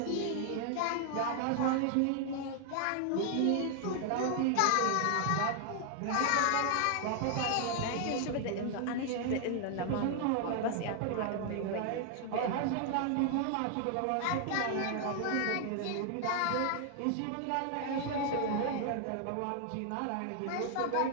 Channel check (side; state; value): both; different; correlation 0.00